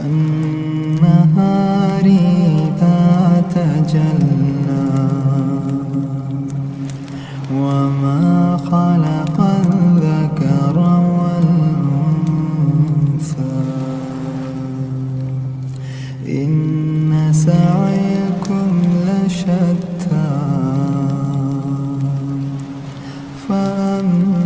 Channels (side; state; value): both; identical; correlation 1.00